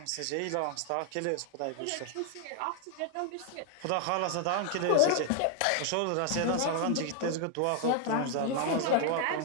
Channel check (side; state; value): both; different; correlation 0.00